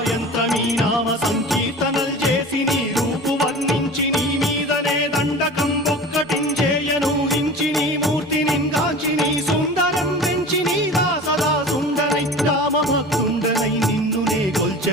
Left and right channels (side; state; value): both; normal; correlation 0.37